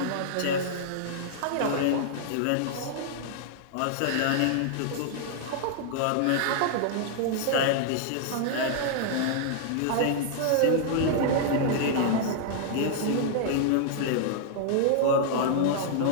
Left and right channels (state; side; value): different; both; correlation -0.01